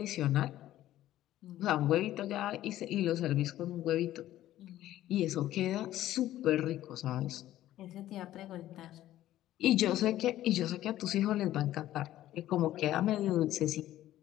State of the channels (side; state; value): right; quieter; 13.8 dB